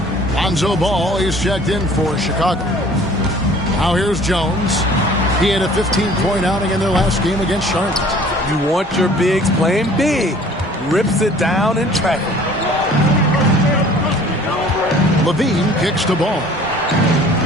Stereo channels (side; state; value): both; normal; correlation 0.51